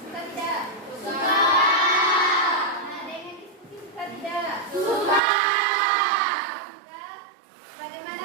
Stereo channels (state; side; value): drops out; left; at 5.2 s